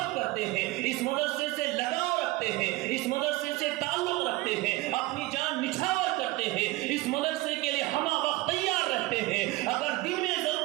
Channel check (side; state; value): left; quieter; 19.7 dB